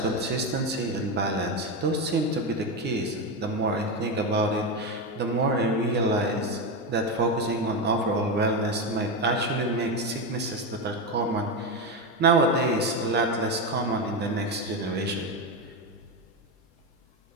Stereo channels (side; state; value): both; normal; correlation 0.13